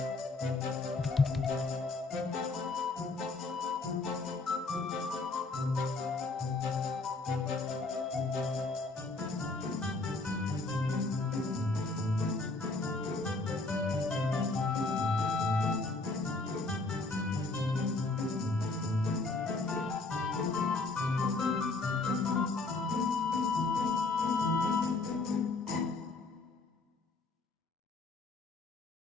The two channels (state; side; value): quieter; right; 3.6 dB